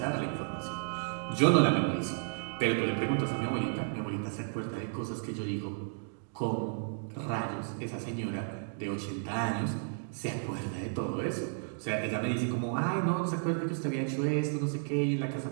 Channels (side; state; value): left; silent; digital silence